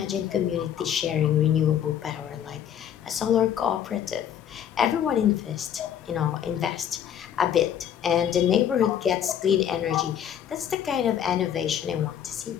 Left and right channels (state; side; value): quieter; right; 9.5 dB